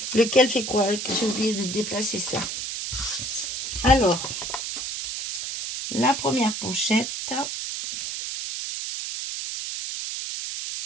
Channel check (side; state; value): right; noise; hiss, 5 dB below the sound